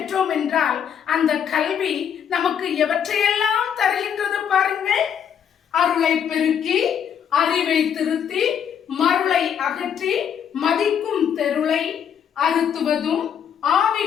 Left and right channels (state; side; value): quieter; right; 8.3 dB